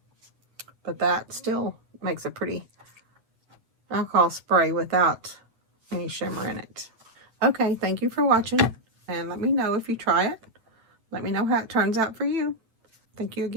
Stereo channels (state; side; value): late; left; 9.1 ms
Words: But that still makes a pretty alcohol spray without any shimmer in it. Okay, thank you for watching, and let me know if you try it. Let me know how it turns out for you. Thank you